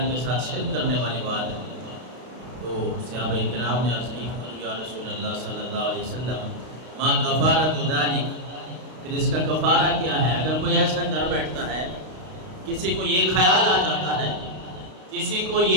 کے ساتھ شرک کرنے والی بات ہے۔ تو صحابہ کرام نے عرض کی یا رسول اللہ صلی اللہ علیہ وسلم ما کفارۃ ذالک، پھر اس کا کفارہ کیا ہے؟ اگر کوئی ایسا کر بیٹھتا ہے، کسی کو یہ خیال آ جاتا ہے، کسی کو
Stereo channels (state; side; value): late; left; 32 ms